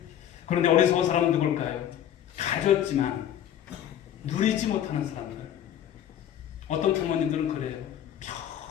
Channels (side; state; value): right; quieter; 10.5 dB